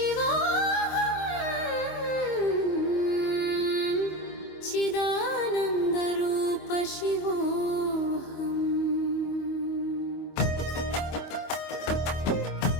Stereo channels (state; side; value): late; right; 25 ms